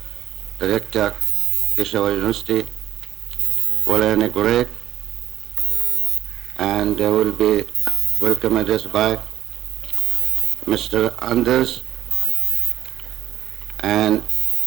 Director, Peshawar University, will inaugurate, and there will be welcome address by Mr. Anders and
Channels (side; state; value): left; quieter; 12.7 dB